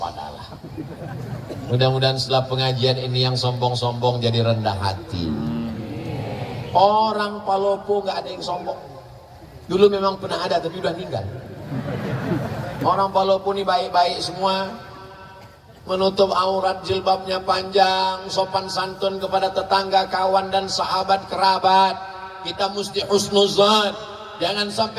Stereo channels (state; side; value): identical; both; correlation 1.00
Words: Mudah-mudahan setelah pengajian ini yang sombong-sombong jadi rendah hati. Orang Palopo nggak ada yang sombong. Dulu memang pernah ada tapi udah meninggal. Orang Palopo ini baik-baik semua, menutup aurat, jilbabnya panjang, sopan santun kepada tetangga, kawan dan sahabat kerabat. Kita mesti husnuzan, jangan